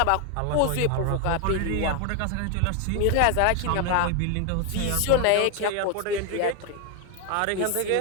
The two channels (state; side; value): different; both; correlation 0.01